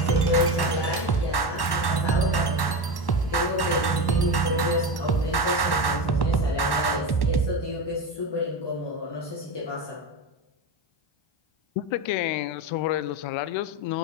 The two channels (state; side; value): late; right; 1.1 ms